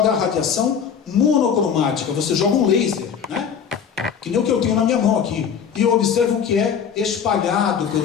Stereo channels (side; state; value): right; quieter; 7.4 dB